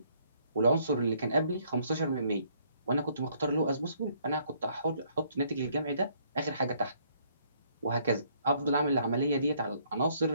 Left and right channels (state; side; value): inverted; both; correlation -0.66